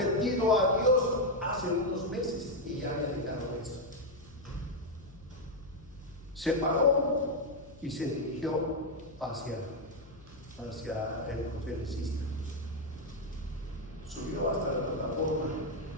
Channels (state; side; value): noise; left; hum, 22 dB below the sound